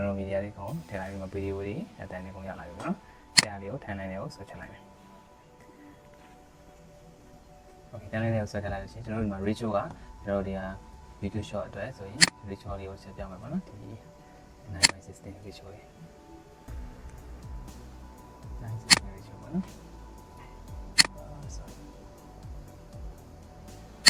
တော်မီဒီယာလေးကိုထည့်လိုက်ပြီးမှဗီဒီယိုတွေအတန်းလေးကိုရလာပြီပေါ့နော်တရားလေးကိုထန်နိုင်လေးကိုဆွဲချလိုက်မယ် okay ထန်နိုင်လေးကိုဆွဲချလိုက်လို့ရှိရင်ကျွန်တော်ဒီမှာ ratio ကကျွန်တော်တို့ဒီဟာ video shot အတွက်ဆိုရင် ratio လေးကိုဆက်ပြမယ်ပေါ့နော်ဒီ 9:16 ratio လေး9:16 ratio ပေါ့နော် sorry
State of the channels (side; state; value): both; identical; correlation 1.00